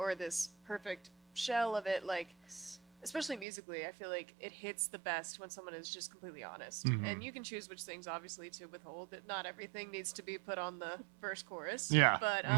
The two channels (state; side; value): drops out; left; at 3.5 s